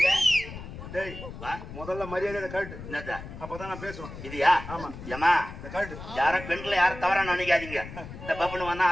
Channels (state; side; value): noise; left; rumble, 12 dB below the sound